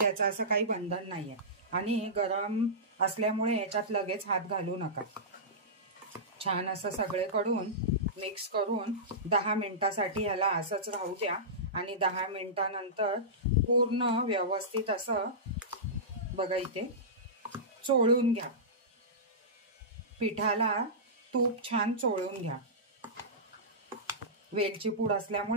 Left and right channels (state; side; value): normal; both; correlation -0.17